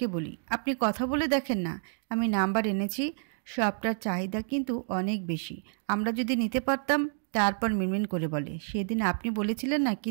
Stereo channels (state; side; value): silent; left; digital silence